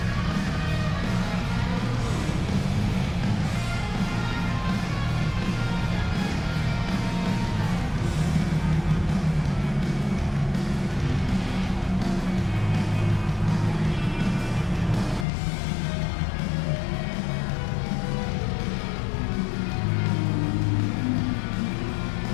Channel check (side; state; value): right; drops out; at 15.2 s